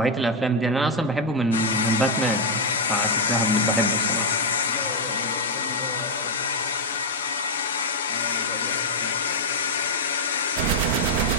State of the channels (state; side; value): normal; both; correlation 0.00